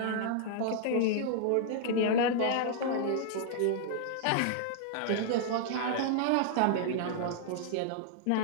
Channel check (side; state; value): both; different; correlation -0.01